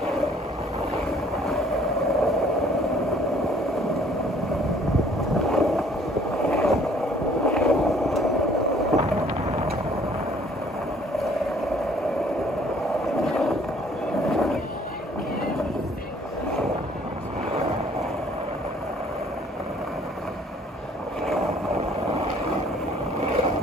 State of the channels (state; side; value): normal; both; correlation 0.58